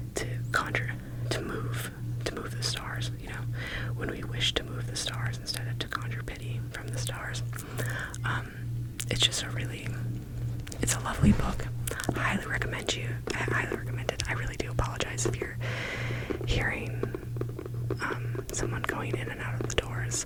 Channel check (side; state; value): both; identical; correlation 1.00